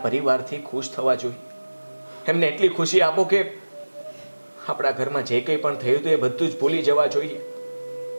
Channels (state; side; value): inverted; both; correlation -1.00